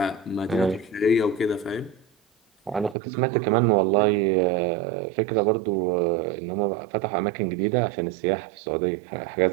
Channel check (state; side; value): drops out; left; at 3.0 s